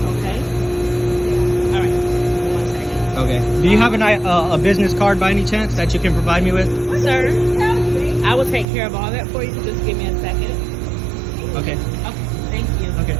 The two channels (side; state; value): left; drops out; at 8.7 s